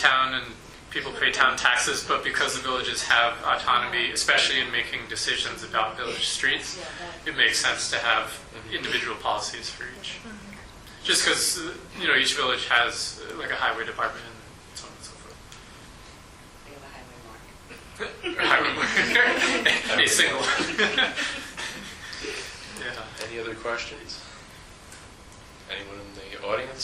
and people pay town taxes, but because the villages have autonomy, especially in making decisions about village streets, it makes sense to have individual policies for each. Just because, each village has like a highway department and so on and so forth. Highway mark. A single. Yeah. Any other questions? Anyone in the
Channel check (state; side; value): identical; both; correlation 1.00